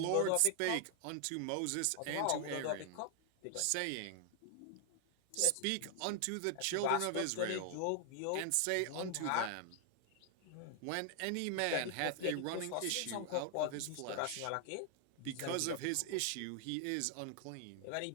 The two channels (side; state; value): both; different; correlation 0.00